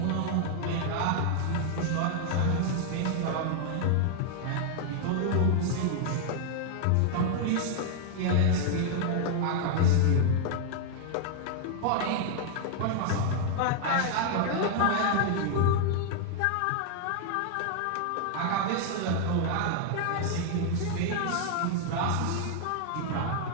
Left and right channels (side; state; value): both; different; correlation 0.00